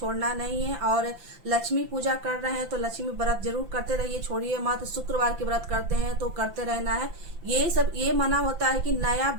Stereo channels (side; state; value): left; late; 5.9 ms